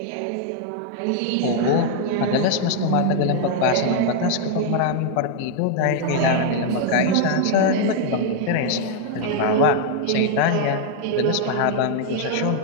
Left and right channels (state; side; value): different; both; correlation 0.00